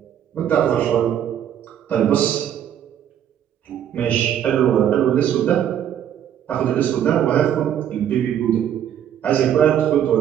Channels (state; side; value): quieter; left; 9.9 dB